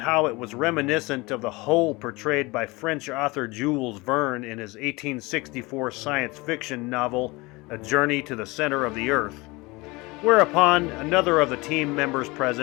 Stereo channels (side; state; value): right; quieter; 23.9 dB